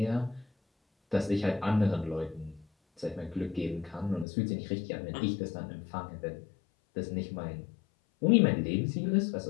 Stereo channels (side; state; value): right; drops out; at 4.2 s